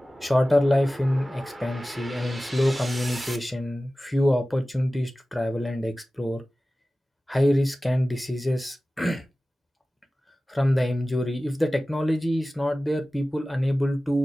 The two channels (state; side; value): normal; both; correlation 0.96